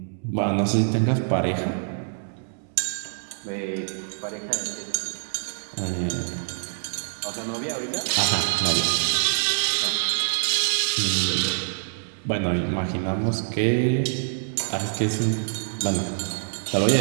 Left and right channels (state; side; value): silent; left; 61 dB below the other